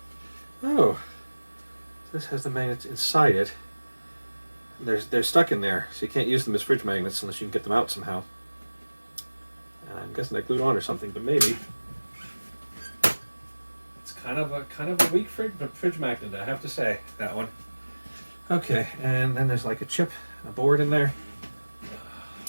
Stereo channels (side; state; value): both; inverted; correlation -1.00